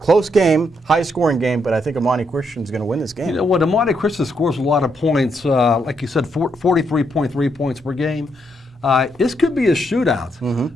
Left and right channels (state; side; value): normal; both; correlation 0.77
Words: game, high-scoring game, but I think Imani Christian is going to win this game. You know what? Imani Christian scores a lot of points, like you said, 43.3 points per game. This could be a shootout.